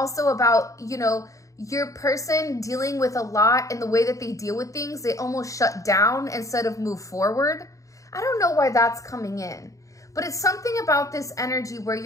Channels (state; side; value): late; right; 0.16 ms